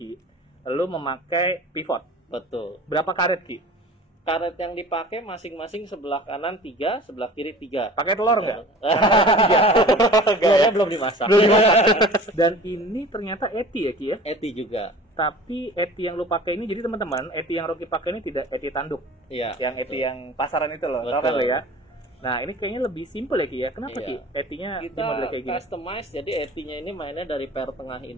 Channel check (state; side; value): normal; both; correlation 0.42